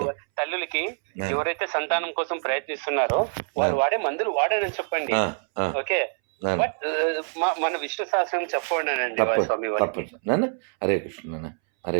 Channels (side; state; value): left; silent; 61 dB below the other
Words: తల్లులకి ఎవరైతే సంతానం కోసం ప్రయత్నిస్తున్నారో వాళ్ళు వాడే మందులు వాడని చెప్పండి. ఓకే, బట్ మన విష్ణు సహస్రనామం చెప్పండి అండి స్వామి. హరే కృష్ణ, హరే